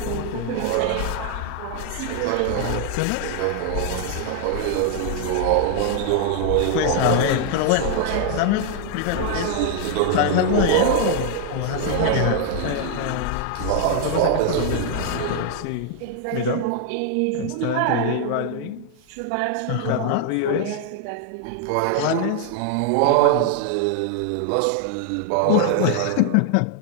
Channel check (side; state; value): both; different; correlation 0.00